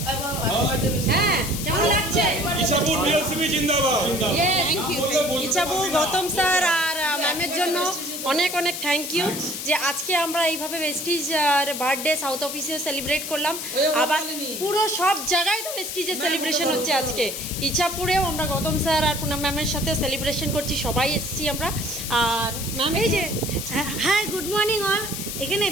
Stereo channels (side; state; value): left; noise; hiss, 6 dB below the sound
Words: হ্যাঁ কেমন লাগছে? ইছাপুর ডিএলসিপি জিন্দাবাদ। ইচ্ছাপু গৌতম স্যার আর ম্যামের জন্য অনেক অনেক থ্যাংক ইউ যে আজকে আমরা এইভাবে ভেস্টিজ বার্থডে সাউথ অফিসে সেলিব্রেট করলাম। আবার পুরো সব জায়গায় তো ভেস্টিজের সেলিব্রেশন হচ্ছে আজকে। ইচ্ছাপুরেও আমরা গৌতম স্যার আর পুনম ম্যামের সাথে সেলিব্রেশন করছি, সবাই এসেছি আমরা। আর ম্যাম এই যে হ্যাঁ, গুড মর্নিং অল। এখানে